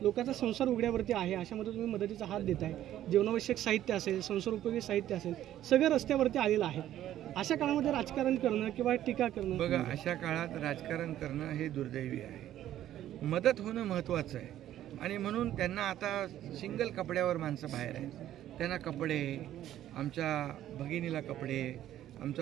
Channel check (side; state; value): left; quieter; 12.4 dB